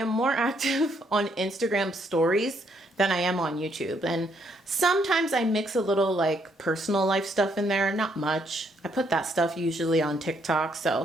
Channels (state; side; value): normal; both; correlation 0.72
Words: more active on Instagram stories than I am on YouTube. And sometimes I mix a little like personal life stuff in there, not much. I put that stuff usually on TikTok.